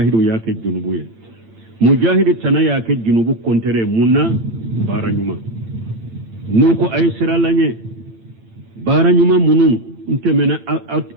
yake junubu ye mujahidu tana yake junubu kontere munna baranyuma nuko aye sira lanye baranyuma munun ntemena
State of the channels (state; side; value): late; left; 8.9 ms